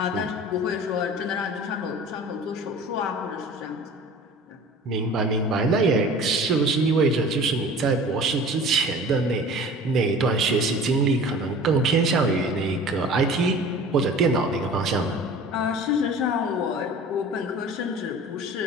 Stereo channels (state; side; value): normal; both; correlation 0.42